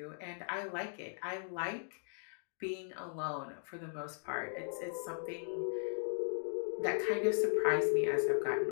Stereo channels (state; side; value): silent; right; digital silence